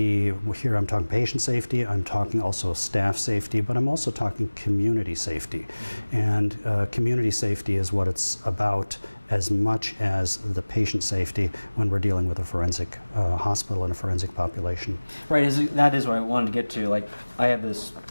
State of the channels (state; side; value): inverted; both; correlation -1.00